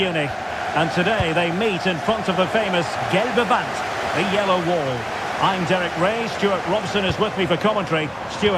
And today they meet in front of the famous Gelbe Wand, the yellow wall. I'm Derek Ray, Stuart Robson is with me for commentary.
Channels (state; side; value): identical; both; correlation 1.00